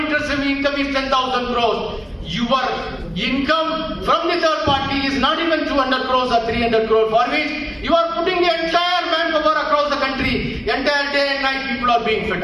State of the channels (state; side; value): identical; both; correlation 1.00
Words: income is 10,000 crores, your income from the third party is not even 200 crores or 300 crores, for which you are putting the entire manpower across the country. Entire day and night people are being fed